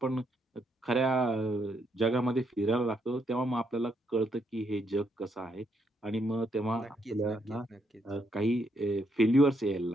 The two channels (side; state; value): both; normal; correlation 0.76